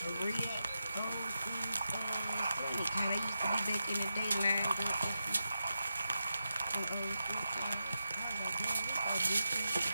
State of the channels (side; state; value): both; inverted; correlation -0.88